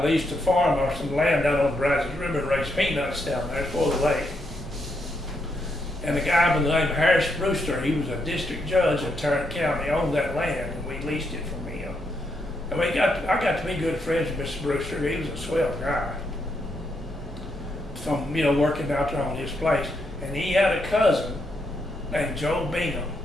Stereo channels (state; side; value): normal; both; correlation 0.79